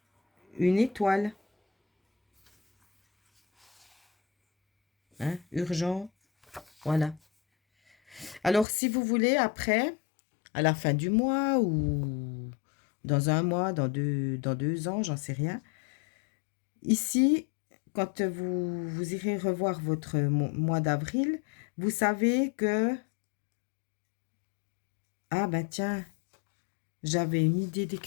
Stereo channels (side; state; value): right; drops out; at 8.7 s